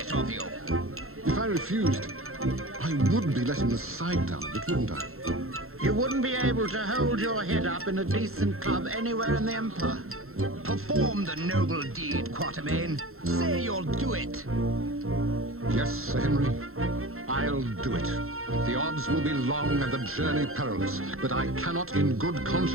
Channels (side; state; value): left; late; 0.62 ms